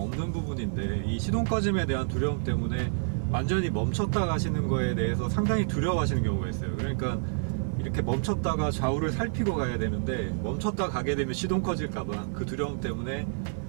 부분인데 이 시동 꺼짐에 대한 두려움 때문에 완전히 멈췄다 가시는 거에 대해서 상당히 두려워하시는 경우가 있어요. 그러니까 이렇게 멈췄다가 좌우를 살피고 가야 되는데 멈췄다 가게 되면 시동 꺼질까봐 그 두려움 때문에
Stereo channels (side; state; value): left; silent; digital silence